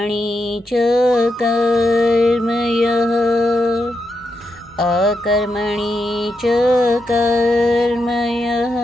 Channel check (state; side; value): normal; both; correlation 0.84